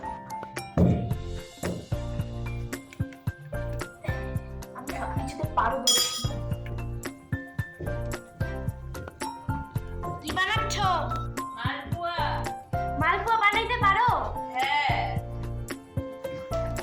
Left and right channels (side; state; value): both; identical; correlation 1.00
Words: আমি সব কিছুতে পারবো। কি বানাচ্ছ? মালপোয়া। মালপোয়া বানাইতে পারো? হ্যাঁ।